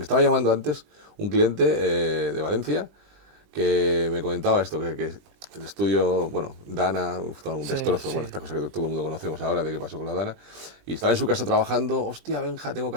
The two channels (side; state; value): left; late; 20 ms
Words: estaba llamando antes un cliente de Valencia que me comentaba esto, que el estudio, bueno, Dana, un destrozo, bueno, esta cosa que todo el mundo conocemos ahora de qué pasó con la Dana, y estaba en su casa trabajando, hostia, Benja, tengo que